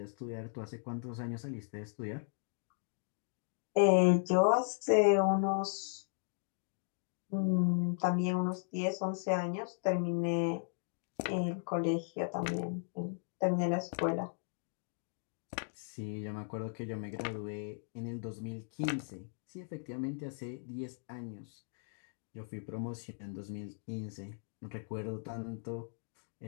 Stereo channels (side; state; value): right; silent; digital silence